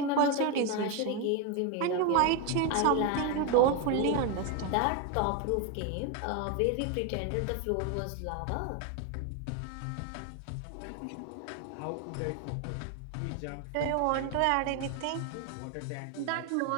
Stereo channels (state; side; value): different; both; correlation 0.02